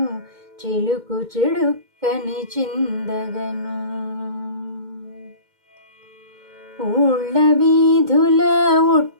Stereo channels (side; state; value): left; late; 2.1 ms